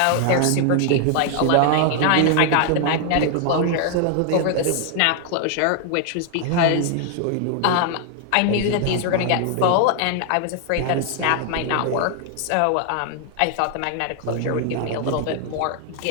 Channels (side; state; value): both; different; correlation 0.00